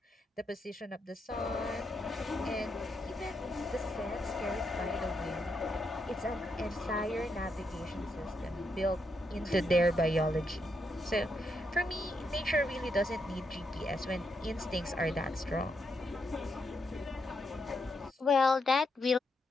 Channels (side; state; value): both; normal; correlation 0.81